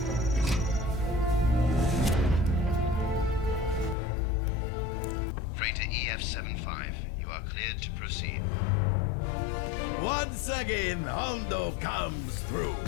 Freighter EF-75, you are cleared to proceed. Once again, Hondo comes through.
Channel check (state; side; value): drops out; right; at 4.0 s